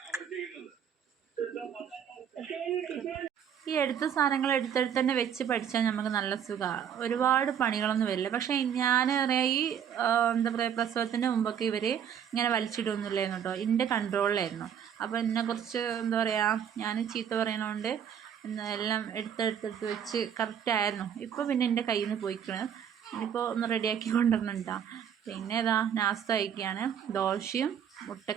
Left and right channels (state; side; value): quieter; left; 8.6 dB